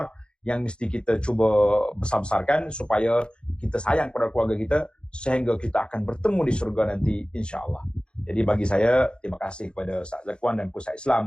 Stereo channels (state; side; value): late; right; 0.053 ms